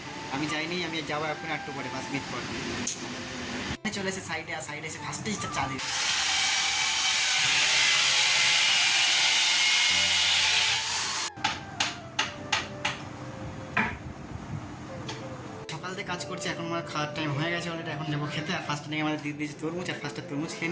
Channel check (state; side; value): identical; both; correlation 1.00